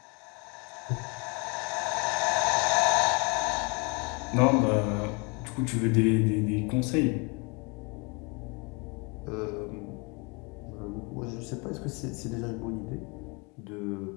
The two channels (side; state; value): right; quieter; 31.0 dB